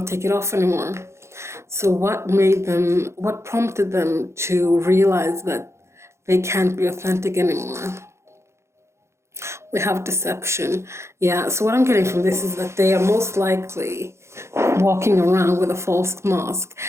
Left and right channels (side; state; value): left; late; 0.13 ms